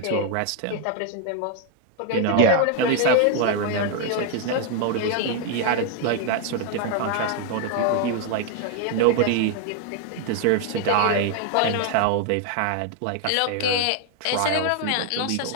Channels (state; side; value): different; both; correlation 0.00